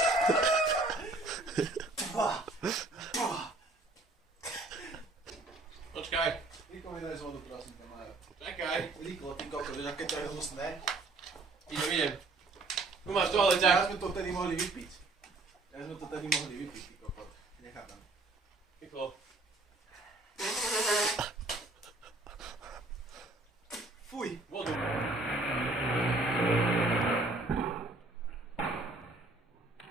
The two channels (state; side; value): quieter; left; 3.1 dB